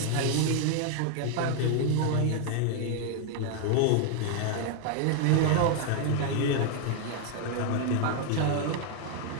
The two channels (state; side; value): different; both; correlation 0.00